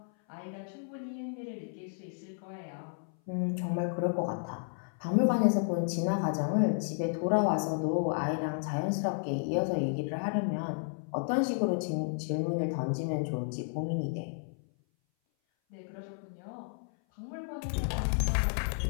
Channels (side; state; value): right; silent; 56 dB below the other